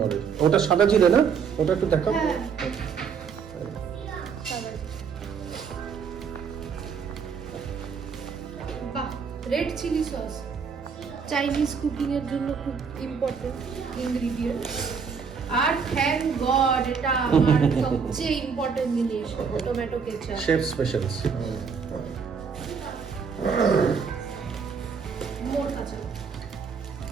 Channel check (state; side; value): quieter; left; 6.1 dB